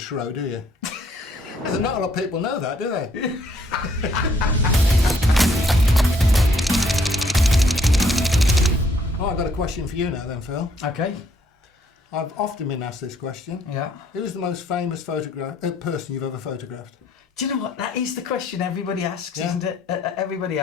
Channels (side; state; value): both; normal; correlation 0.66